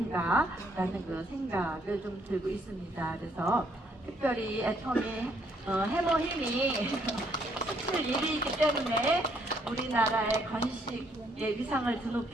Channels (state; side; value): normal; both; correlation 0.69